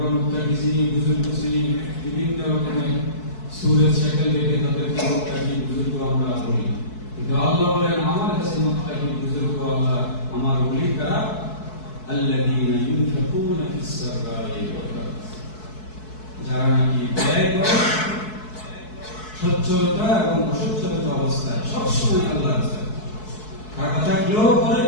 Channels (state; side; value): late; right; 4.6 ms